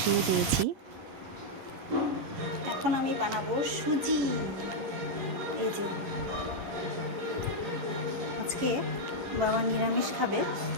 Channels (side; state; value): left; late; 11 ms